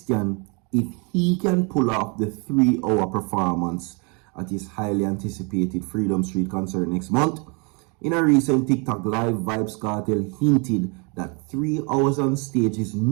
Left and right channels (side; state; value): left; quieter; 33.0 dB